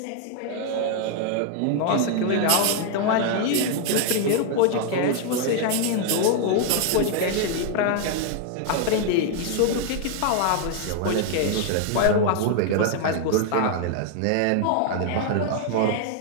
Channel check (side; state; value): both; different; correlation 0.00